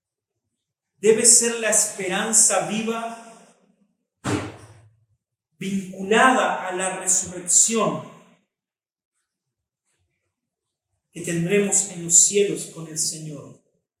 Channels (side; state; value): both; identical; correlation 1.00